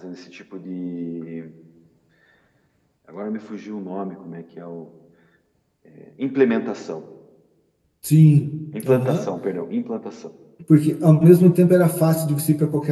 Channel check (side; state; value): both; identical; correlation 1.00